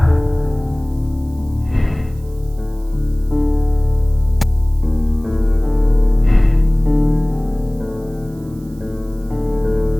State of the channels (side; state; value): right; noise; hiss, 28 dB below the sound